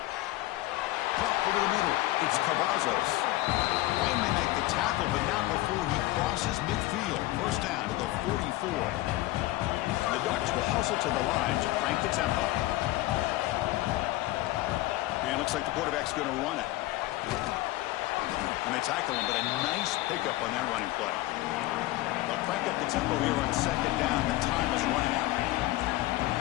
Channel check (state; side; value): quieter; right; 17.7 dB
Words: Pop over the middle. It's Cavazos. Finally make the tackle, but not before he crosses midfield. First down to the 44. And the Ducks will hustle to the line to crank the tempo. And it looks like the quarterback's going to run it. And they tackle him, but a nice pickup on that running play. They'll crank up the tempo here on second down. The time is running out.